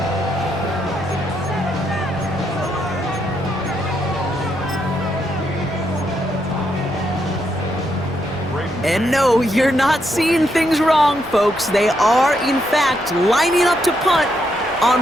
And no, you're not seeing things wrong, folks. They are, in fact, lining up to punt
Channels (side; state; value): left; noise; hum, 22 dB below the sound